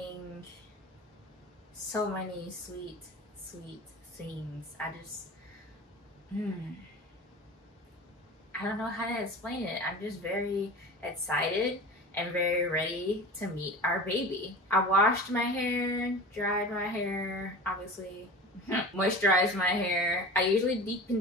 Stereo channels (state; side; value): normal; both; correlation 0.36